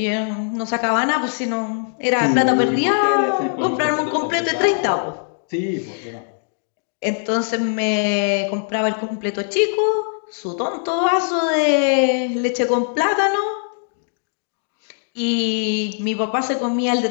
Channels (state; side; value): silent; right; 65 dB below the other